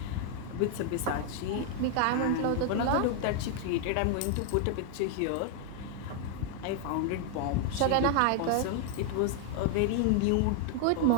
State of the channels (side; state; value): both; different; correlation 0.00